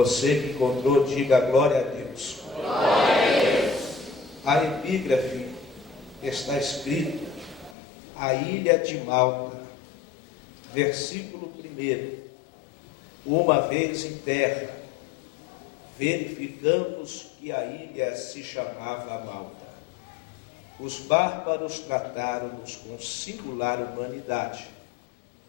que encontrou, diga glória a Deus. Glória a Deus. A epígrafe está escrito: a ilha de Malta, versículo 1. Uma vez em terra, verificamos que a ilha se chamava Malta. Os bárbaros trataram-nos com singular humanidade,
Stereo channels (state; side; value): drops out; right; at 7.8 s